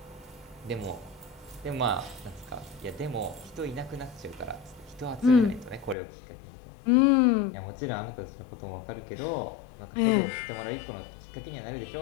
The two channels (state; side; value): drops out; right; at 6.0 s